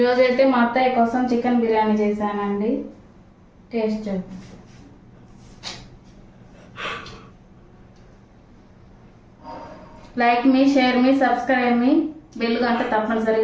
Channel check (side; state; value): both; identical; correlation 1.00